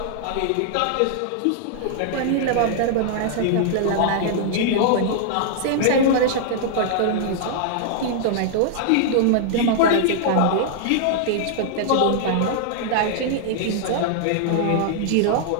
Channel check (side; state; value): both; different; correlation -0.01